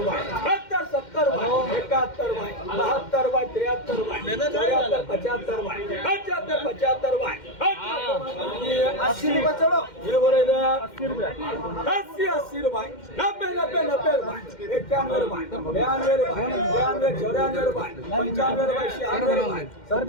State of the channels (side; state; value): right; late; 2.1 ms